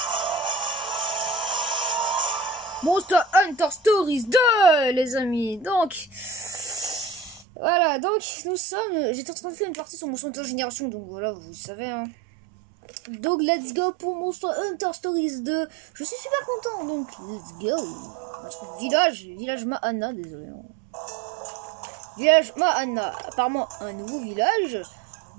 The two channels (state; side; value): drops out; left; at 7.5 s